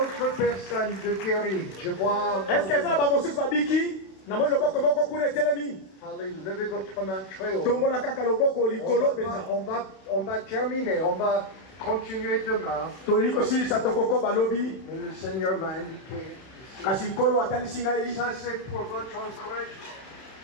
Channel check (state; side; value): late; right; 32 ms